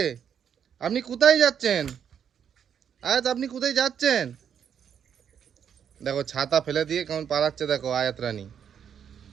আপনি কোথায় যাচ্ছেন? আয়াত আপনি কোথায় যাচ্ছেন? দেখো ছাতা ফেলে দিয়ে কেমন পালাচ্ছে, দেখো আয়াত রানী।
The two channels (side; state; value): left; quieter; 8.2 dB